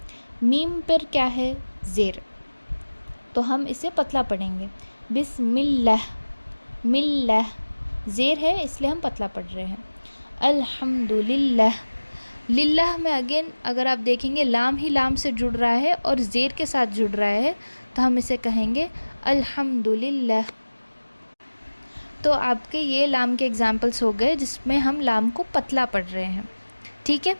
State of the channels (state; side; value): inverted; both; correlation -1.00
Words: میم پر کیا ہے؟ زیر, تو ہم اسے پتلا پڑھیں گے. بسم اللہ ملہ, زیر ہے اس لیے ہم پتلا پڑھ رہے ہیں. الحمد للہ, للہ میں اگین اگر آپ دیکھیں گے لام ہی لام سے جڑ رہا ہے اور زیر کے ساتھ جڑ رہا ہے تو ہم اسے کہیں گے الحمد للہ. تو آپ کے یہ لام کے ایگزامپلس ہو گئے جس میں ہم لام کو پتلا پڑھ رہے ہیں. ٹھیک ہے.